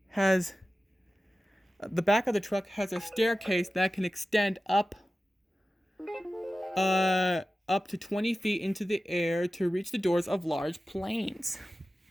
staircase that can extend up to 20 feet into the air to reach the doors of large planes.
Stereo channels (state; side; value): normal; both; correlation 0.95